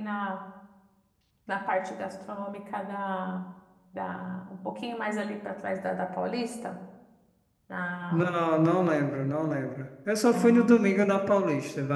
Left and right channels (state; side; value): identical; both; correlation 1.00